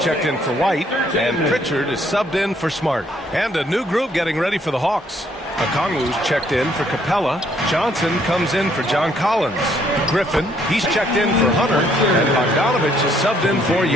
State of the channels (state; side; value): normal; both; correlation 0.67